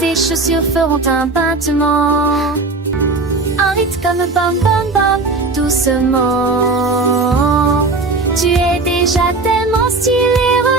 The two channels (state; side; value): quieter; left; 3.6 dB